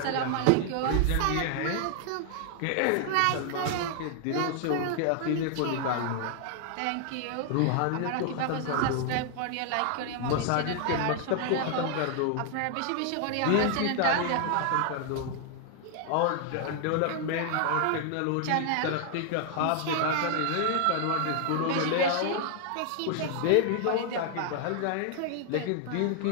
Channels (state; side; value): different; both; correlation 0.00